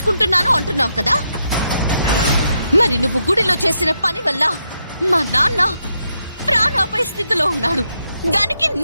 అంటున్నావు కదా. మరి నువ్వు గుడిలో చేసిన పని వల్ల మా నాన్న ప్రాణాపాయ స్థితిలో ఉన్నాడు. దానికి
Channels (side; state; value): both; inverted; correlation -0.81